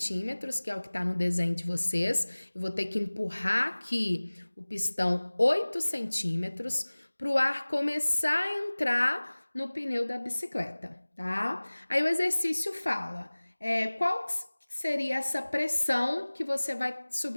que é o que está no desenho de vocês. Eu vou ter que empurrar aqui o pistão 8 centímetros para o ar começar a entrar no pneu da bicicleta, tá? Aí o exercício fala, qual seria essa pressão que você vai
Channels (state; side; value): inverted; both; correlation -1.00